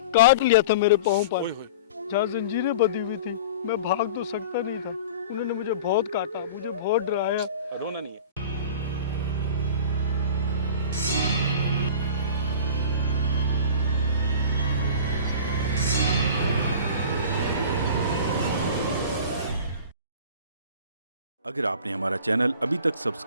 काट लिया था मेरे पाँव पर, ओए होए। जहाँ जंजीरें बंधी हुई थी। मैं भाग तो सकता नहीं था। उन्होंने मुझे बहुत काटा, मुझे बहुत डराया। रोना नहीं है। अगर आपने हमारा चैनल अभी तक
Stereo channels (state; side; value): inverted; both; correlation -0.38